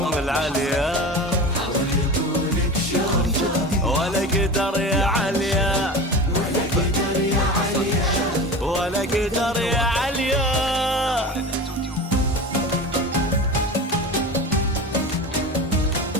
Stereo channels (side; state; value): both; normal; correlation 0.30